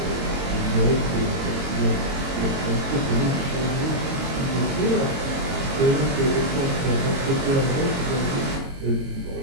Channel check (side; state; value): left; late; 22 ms